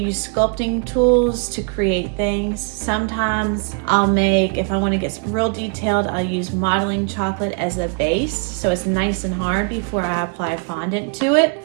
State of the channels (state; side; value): quieter; left; 38.7 dB